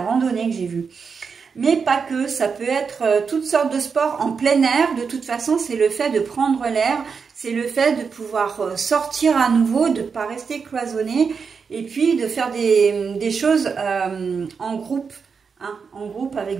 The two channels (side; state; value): left; quieter; 5.7 dB